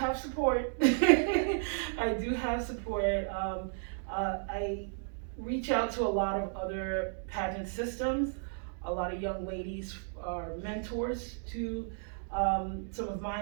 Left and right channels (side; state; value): left; silent; digital silence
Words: support. I do have support. I reach out to a lot of other pageant systems. A lot of young ladies are mentors to some of